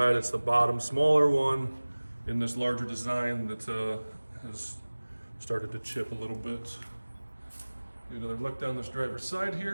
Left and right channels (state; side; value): inverted; both; correlation -1.00